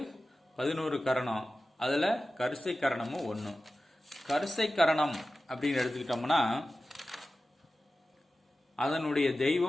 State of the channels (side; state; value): both; normal; correlation 0.94